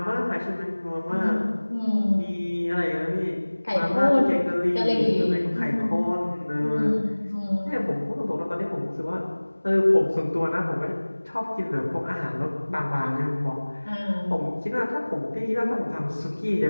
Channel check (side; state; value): both; inverted; correlation -1.00